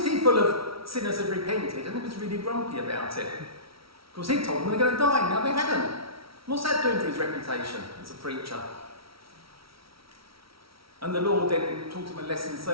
full of sinners had repented, and he was really grumpy about it. Because he told them they're going to die, now they hadn't. What's that doing for his reputation as a preacher? And the Lord then taught him a lesson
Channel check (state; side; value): late; left; 0.75 ms